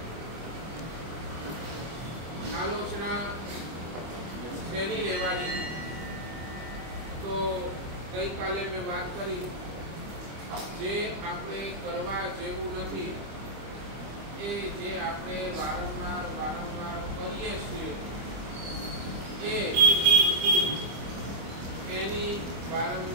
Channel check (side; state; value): left; late; 25 ms